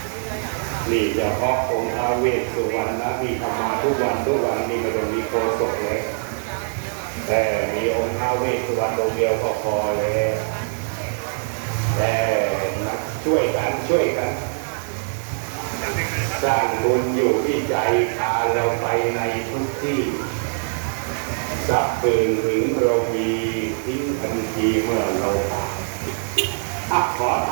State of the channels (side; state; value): left; silent; digital silence